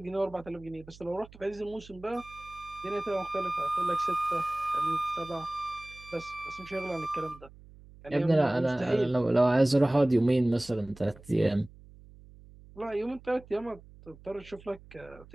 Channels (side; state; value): right; noise; hum, 21 dB below the sound